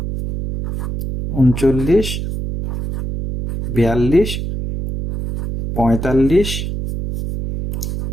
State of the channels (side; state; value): right; noise; hum, 4 dB below the sound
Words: 39, 42, 45,